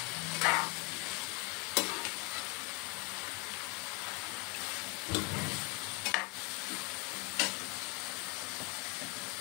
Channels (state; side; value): quieter; right; 31.2 dB